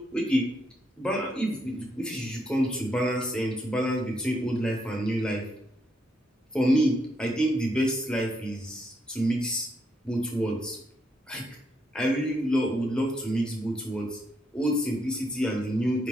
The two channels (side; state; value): both; normal; correlation 0.77